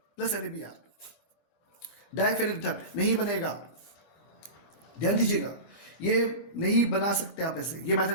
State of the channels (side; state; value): right; late; 25 ms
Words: plus NaBr, diphenyl ether नहीं बनेगा। ध्यान दीजिएगा, ये नहीं बना सकते आप ऐसे, ये